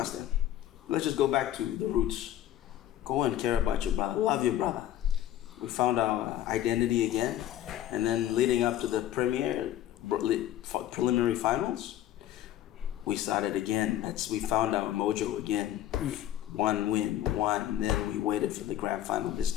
Let's just go back to the roots. Go and care about your brother. Love your brother. We found our identity again. And then leading up to the preliminary finals, we started again. We found our mojo again. One win, and then we waited for the grand final this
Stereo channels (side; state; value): right; quieter; 12.4 dB